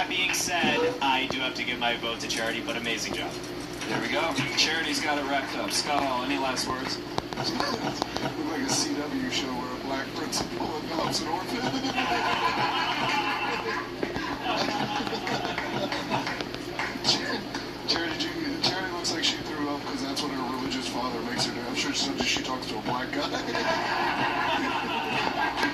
being said, I do have to give my vote to Charity, but amazing job. There we go. Charity's got it wrapped up. Scott Hall, any last words? Look like a CW show where a black principal adopts an orphan. Charity looks like she threw up because that's what her religious father makes her do. I'm sure she talks to a black guy.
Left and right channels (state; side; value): identical; both; correlation 1.00